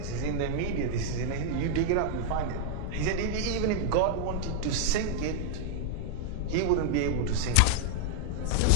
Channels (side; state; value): both; different; correlation -0.01